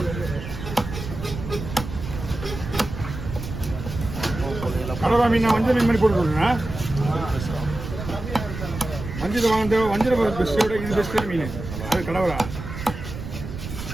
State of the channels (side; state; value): right; noise; rumble, 8 dB below the sound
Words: கடவா மீன் வஞ்சல் மீன் மாதிரி போட்டு கொடுங்க. வஞ்சல் வாங்க வஞ்சல் பெஸ்ட்டோட இது பெஸ்ட் மீன் அது கடவுளா.